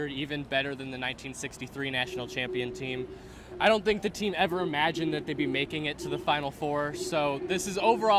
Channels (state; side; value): identical; both; correlation 1.00